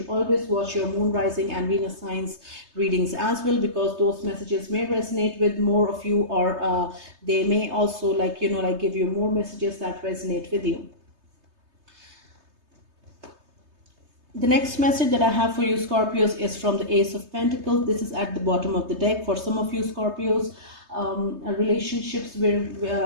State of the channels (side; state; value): left; late; 3.3 ms